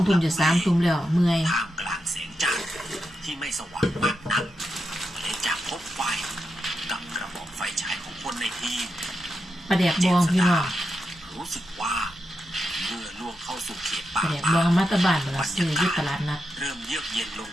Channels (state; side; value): normal; both; correlation 0.86